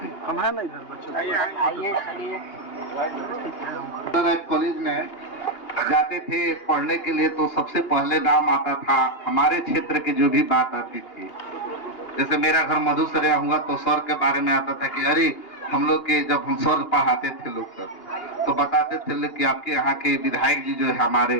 हम है ना इधर बच्चों, आइए चलिए। कॉलेज में जाते थे पढ़ने के लिए तो सबसे पहले नाम आता था हमारे क्षेत्र की जो भी बात आती थी। जैसे मेरा घर मधुसरिया हुआ तो सर के बारे में आता था कि अरे हम लोग के जब हम सर पढ़ाते थे लोग सब तो बताते थे कि आपके यहाँ के विधायक जी जो है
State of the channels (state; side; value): late; right; 2.8 ms